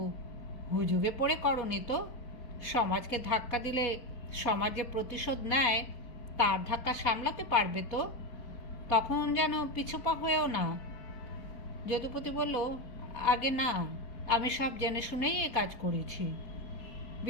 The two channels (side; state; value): right; late; 4.2 ms